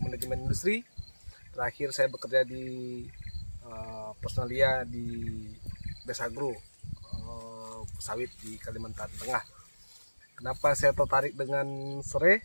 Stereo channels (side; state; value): both; inverted; correlation -1.00